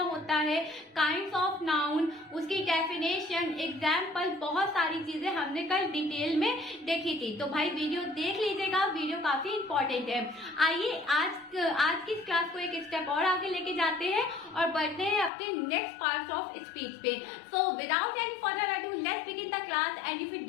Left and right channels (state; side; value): drops out; right; at 15.3 s